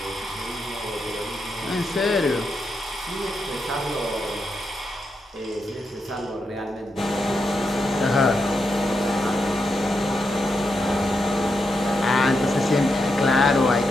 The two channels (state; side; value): normal; both; correlation 0.84